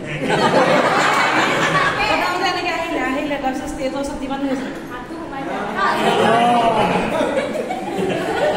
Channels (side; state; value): both; identical; correlation 1.00